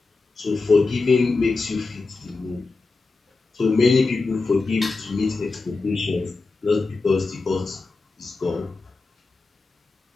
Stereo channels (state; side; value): quieter; right; 3.8 dB